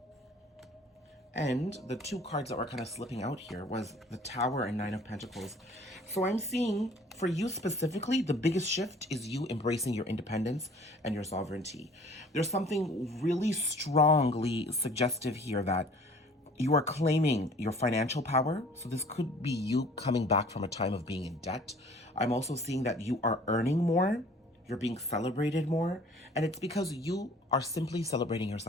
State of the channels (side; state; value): both; normal; correlation 0.51